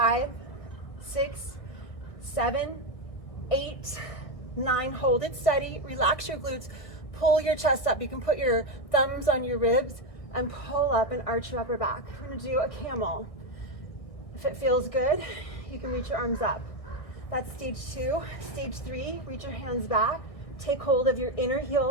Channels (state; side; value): late; right; 1.6 ms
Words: 6, 7, 8, 9. Hold it steady. Relax your glutes. Pull your chest up. You can put your thumbs on your ribs and pull up and arch your upper back. We're going to do a camel. If it feels good, you can reach your arms up. That's stage 2. Stage 3, reach your hands back. Take hold of your inner